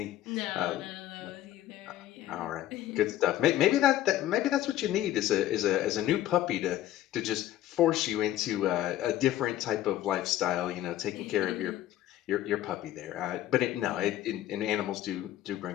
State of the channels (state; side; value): quieter; right; 13.2 dB